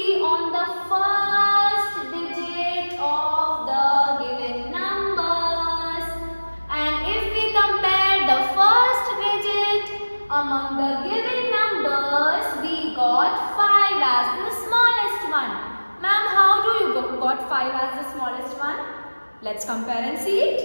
on the first digit of the given numbers. And if we compare the first digit among the given numbers, we got 5 as the smallest one. Ma'am, how do you got 5 as the smallest one? Let's compare and see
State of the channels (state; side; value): inverted; both; correlation -1.00